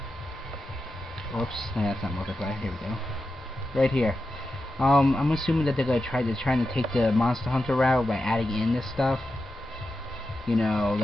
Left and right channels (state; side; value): normal; both; correlation 0.89